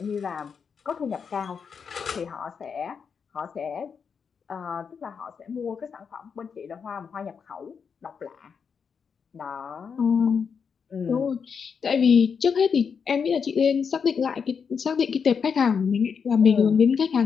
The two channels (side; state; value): right; quieter; 6.3 dB